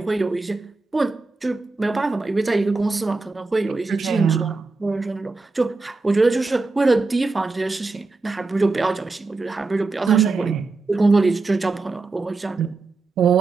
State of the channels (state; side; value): quieter; left; 3.7 dB